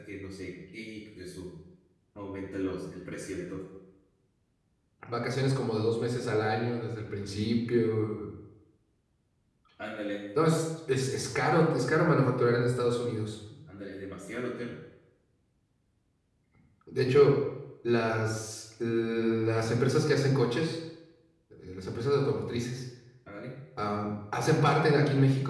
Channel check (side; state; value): both; identical; correlation 1.00